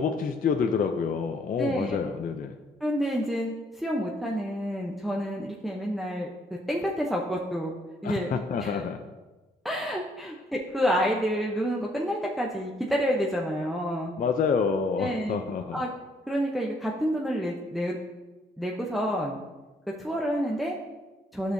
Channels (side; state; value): both; normal; correlation 0.67